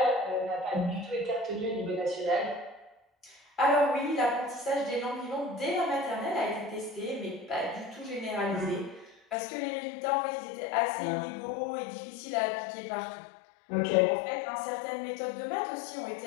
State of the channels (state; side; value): drops out; right; at 9.3 s